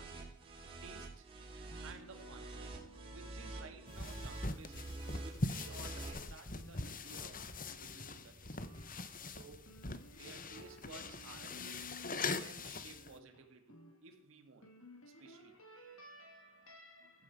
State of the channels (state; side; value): normal; both; correlation 0.48